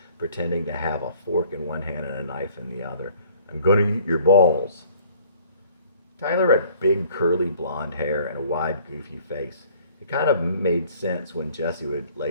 pretending to have a fork in one hand and a knife in the other. I'm gonna eat your balls. Tyler had big, curly blonde hair and a wide, goofy face. It kind of made sense when Jesse would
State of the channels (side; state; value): both; inverted; correlation -0.55